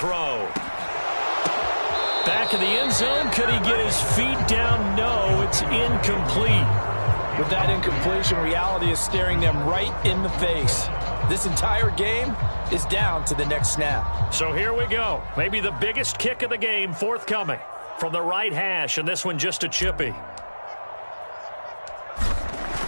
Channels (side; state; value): both; inverted; correlation -1.00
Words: Back in the end zone. Could he get his feet down? No, it's incomplete. With that incompletion, reality is staring them right in the face. This entire game is down to the next snap. So here we go. Maybe the biggest kick of the game forthcoming from the right hash, and this one just a chippy.